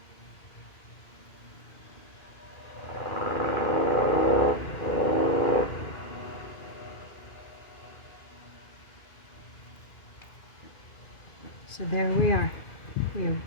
So there we are. We have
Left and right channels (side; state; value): right; late; 2.5 ms